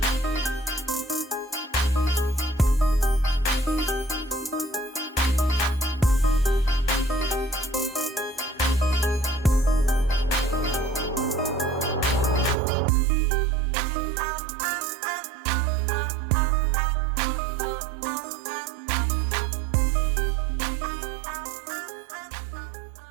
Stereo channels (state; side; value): drops out; left; at 12.6 s